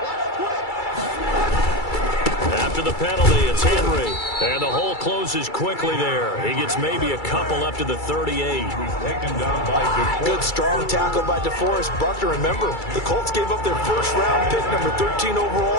After the penalty, it's Henry. And the hole closes quickly there. He gets maybe a couple up to the 38. Good strong tackle by DeForest Buckner. Remember, the Colts gave up their first-round pick, number 13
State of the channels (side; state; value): right; late; 2.3 ms